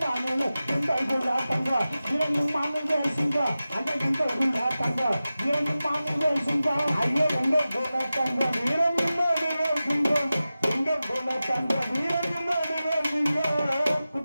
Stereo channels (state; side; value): inverted; both; correlation -0.95